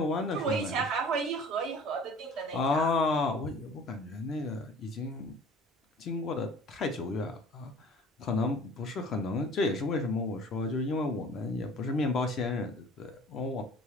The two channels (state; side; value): normal; both; correlation 0.47